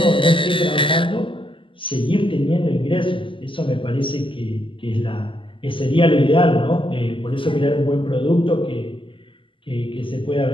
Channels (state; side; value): late; right; 0.25 ms